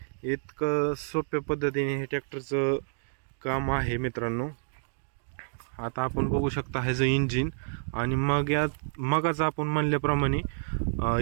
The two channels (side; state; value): left; silent; digital silence